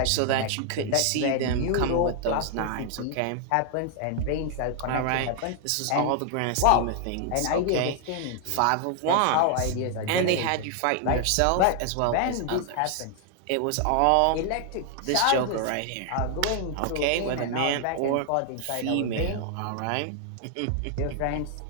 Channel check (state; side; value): different; both; correlation 0.00